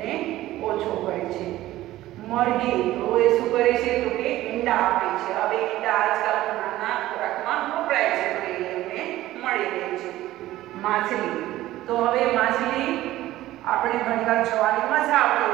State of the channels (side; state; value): left; quieter; 15.5 dB